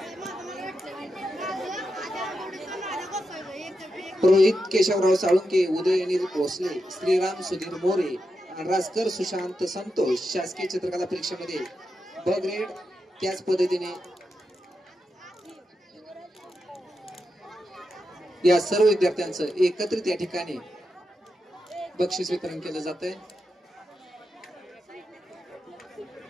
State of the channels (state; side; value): normal; both; correlation 0.87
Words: रोहित केशवराव साळुंके, उदय अनिल भोसले, श्रीराम सुधीर मोरे, राजकर सुशांत संतोष शासकीय चित्रकला परीक्षेमध्ये ब ग्रेड. त्याच पद्धतीने या सर्व विद्यार्थ्यांचं एकत्रित या ठिकाणी बक्षीस वितरण केलं जात आहे.